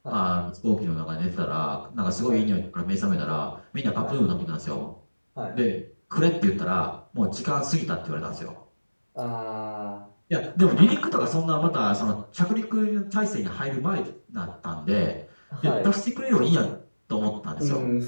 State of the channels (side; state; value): both; inverted; correlation -1.00